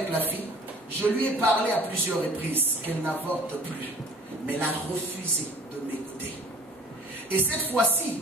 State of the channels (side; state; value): both; normal; correlation 0.50